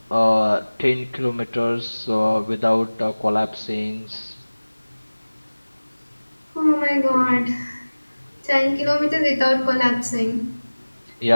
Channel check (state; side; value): inverted; both; correlation -1.00